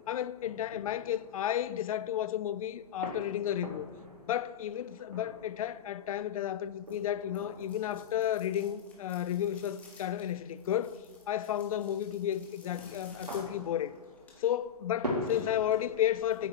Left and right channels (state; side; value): quieter; right; 9.5 dB